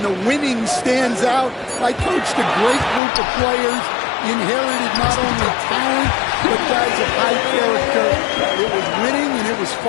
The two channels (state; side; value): drops out; right; at 3.0 s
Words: the winning stands out. I coached a great group of players, inherited not only talent, but guys of high character. It was winning, and it was